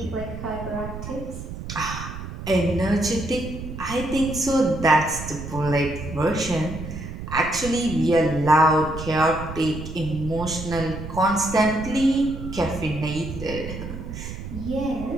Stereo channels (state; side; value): noise; right; rumble, 9 dB below the sound